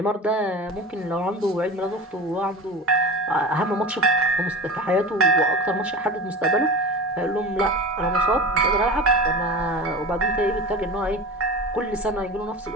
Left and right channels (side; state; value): both; normal; correlation 0.31